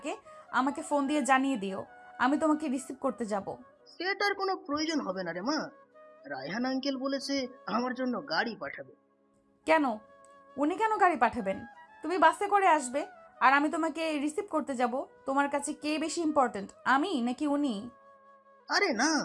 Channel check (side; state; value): both; identical; correlation 1.00